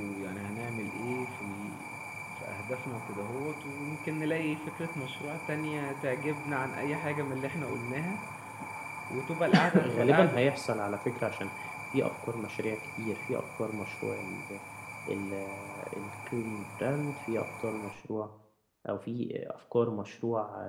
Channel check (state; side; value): identical; both; correlation 1.00